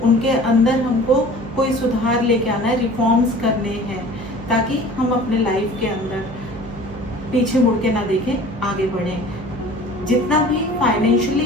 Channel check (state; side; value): noise; right; hum, 13 dB below the sound